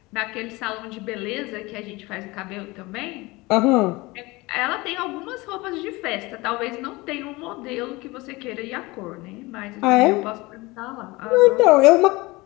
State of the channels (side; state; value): right; quieter; 22.5 dB